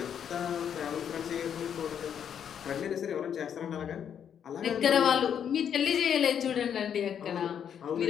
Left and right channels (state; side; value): quieter; right; 8.5 dB